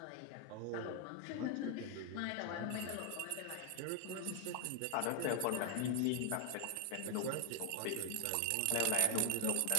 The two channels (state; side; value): different; both; correlation 0.00